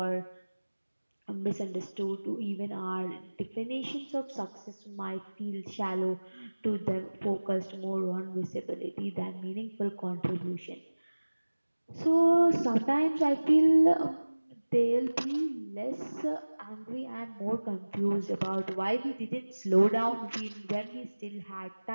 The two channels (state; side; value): inverted; both; correlation -1.00